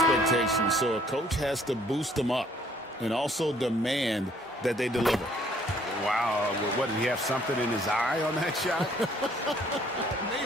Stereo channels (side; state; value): both; normal; correlation 0.62